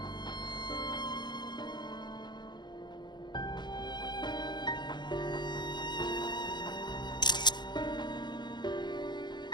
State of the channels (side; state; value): right; late; 0.21 ms